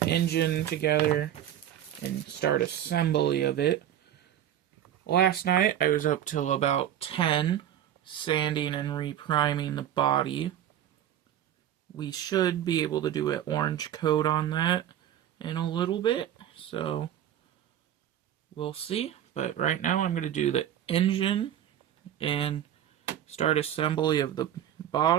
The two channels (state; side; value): quieter; left; 10.9 dB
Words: engine together, and start assembly of it. Last night, I was up till about 10, sanding and repriming the body. We should be able to do an orange coat on that in a little bit, so we'll see. But right now I'm going to do the engine and start assembly of the